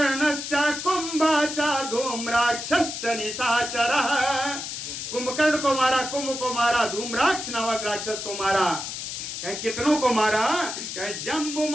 कुंभाच धूम्राक्षश्च निशाचरः, कुंभकर्ण को मारा, कुंभ को मारा, धूम्राक्ष नामक राक्षस को मारा। कितनों को मारा,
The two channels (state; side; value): noise; left; hiss, 6 dB below the sound